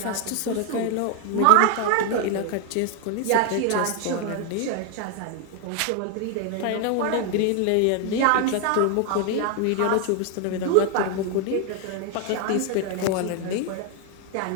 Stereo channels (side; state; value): both; different; correlation 0.00